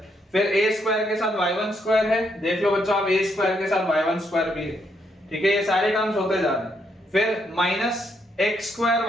फिर a स्क्वायर के साथ y1 स्क्वायर है, देख लो बच्चों आप a स्क्वायर के साथ y1 स्क्वायर भी है, ठीक है, ये सारे टर्म्स होते जा रहे हैं। फिर minus x square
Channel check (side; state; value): both; normal; correlation 0.76